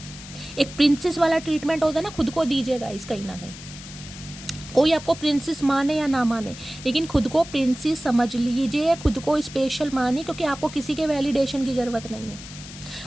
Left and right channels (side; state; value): left; noise; hiss, 15 dB below the sound